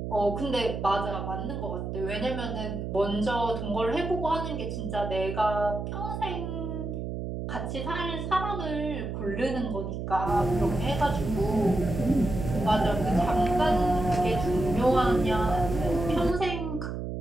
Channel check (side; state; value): right; noise; hum, 5 dB below the sound